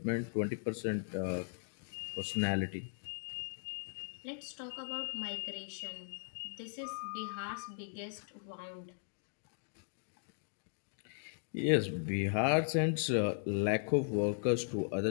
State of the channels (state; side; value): silent; right; digital silence